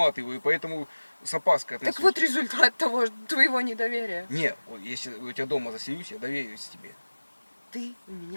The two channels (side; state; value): both; inverted; correlation -1.00